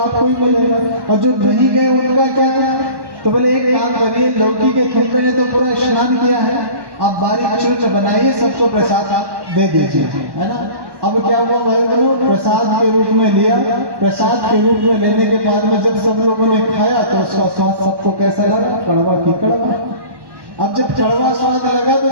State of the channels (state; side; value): late; left; 1.1 ms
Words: ही मिलेगा, और जो नहीं गए उनका क्या? तो बोले एक काम करिए, लौकी के खुम्बे ने तो पूरा स्नान किया है, आप बारीक चूर्ण बनाइए, सबको प्रसाद दे दीजिए, है ना। अब क्या हुआ भाई बोलो, प्रसाद के रूप में लिया। प्रसाद के रूप में लेने के बाद में जब सब लोगों ने खाया तो उसका स्वाद सबको कैसा लगा? कड़वा की कड़वा। अब जब कड़वा स्वाद लगा तो